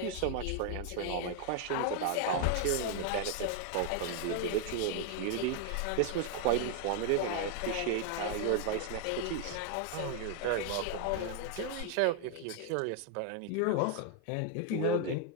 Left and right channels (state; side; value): different; both; correlation 0.00